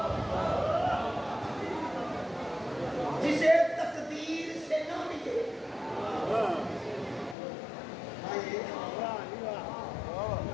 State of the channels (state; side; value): drops out; right; at 7.4 s